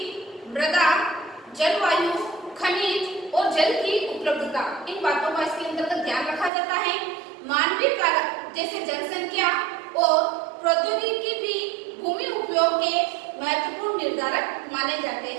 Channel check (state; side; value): drops out; left; at 6.5 s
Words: मृदा, जलवायु, खनिज और जल की उपलब्धता। इन बातों का इसके अंतर्गत ध्यान रखा जाता है। मानवीय कारक जैसे जनसंख्या और प्रौद्योगिकी भी भूमि उपयोग के महत्वपूर्ण निर्धारक माने जाते